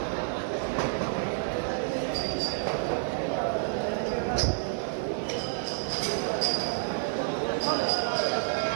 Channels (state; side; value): silent; left; digital silence